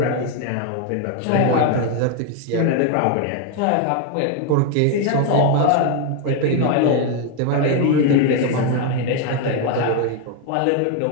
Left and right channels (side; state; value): both; different; correlation 0.01